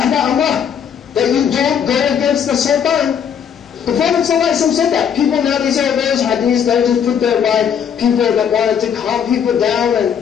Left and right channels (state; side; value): quieter; right; 8.0 dB